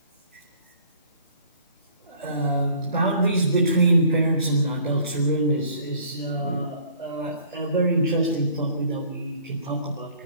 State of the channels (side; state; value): both; inverted; correlation -0.55